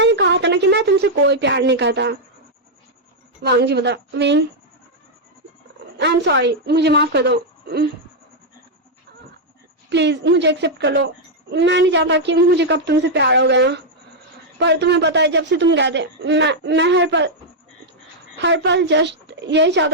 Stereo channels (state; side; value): normal; both; correlation -0.03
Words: कहा था ना कि मैं तुमसे कोई प्यार नहीं करता। वांग जी बोलता, विंग आई एम सॉरी, मुझे माफ कर दो, प्लीज मुझे एक्सेप्ट कर लो। मैं नहीं चाहता कि मुझे कब तुमसे प्यार हो गया, पर तुम्हें पता है जब से तुम गए थे मैं हर पल जस्ट यही